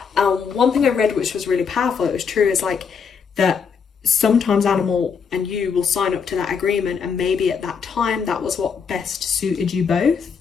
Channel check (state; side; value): quieter; right; 6.2 dB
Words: One thing I read which was really powerful, it was true, is like that sometimes animal and you will sign up to that agreement, and maybe at that time that was what best suited you both.